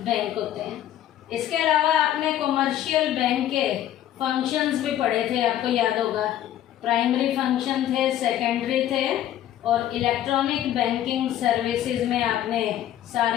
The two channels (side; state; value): right; quieter; 11.9 dB